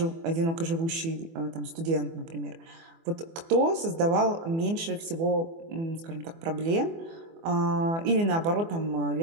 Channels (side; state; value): left; late; 24 ms